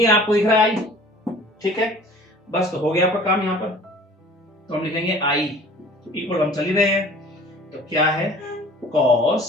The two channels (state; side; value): normal; both; correlation 0.47